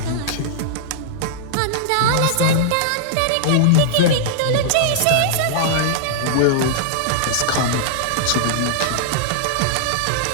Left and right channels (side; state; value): both; different; correlation -0.01